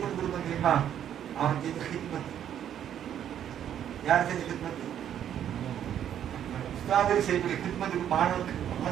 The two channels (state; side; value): quieter; left; 10.0 dB